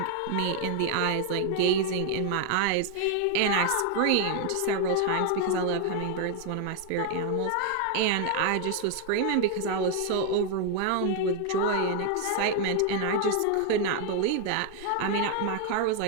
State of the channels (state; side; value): different; both; correlation 0.00